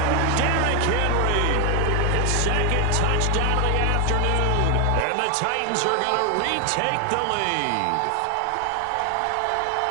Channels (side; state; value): both; different; correlation 0.01